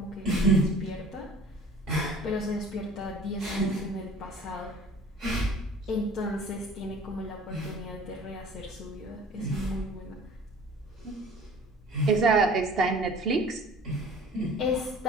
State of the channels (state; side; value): normal; both; correlation 0.48